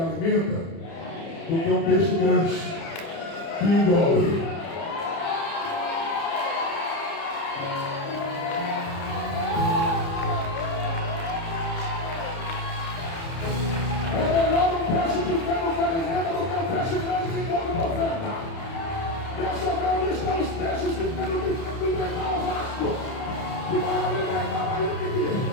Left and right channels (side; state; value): right; late; 30 ms